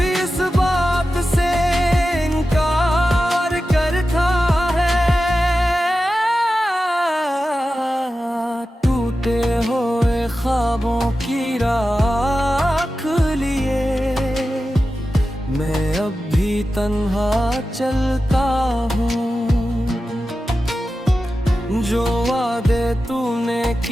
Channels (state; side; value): normal; both; correlation 0.93